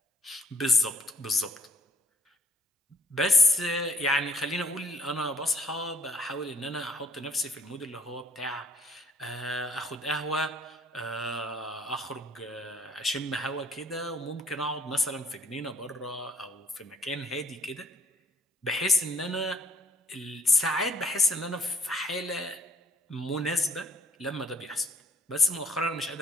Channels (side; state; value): both; normal; correlation 0.61